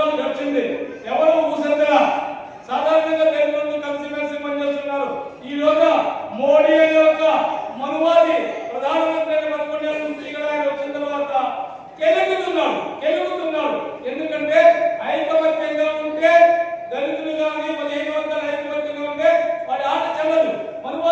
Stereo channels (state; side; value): identical; both; correlation 1.00